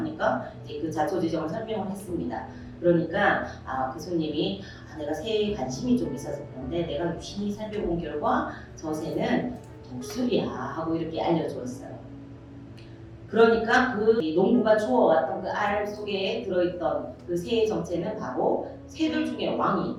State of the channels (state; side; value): identical; both; correlation 1.00